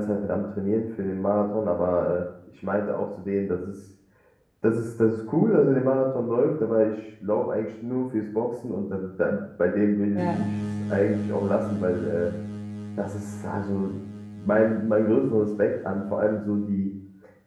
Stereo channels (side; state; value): both; identical; correlation 1.00